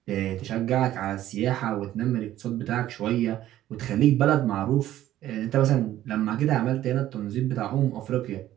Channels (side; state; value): left; quieter; 13.3 dB